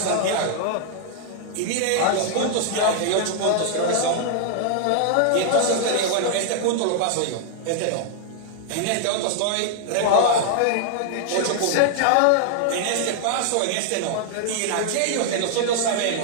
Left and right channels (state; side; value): different; both; correlation -0.01